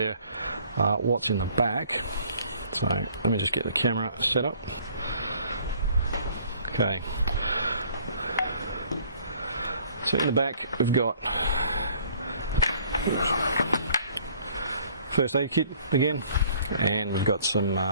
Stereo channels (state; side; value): inverted; both; correlation -0.57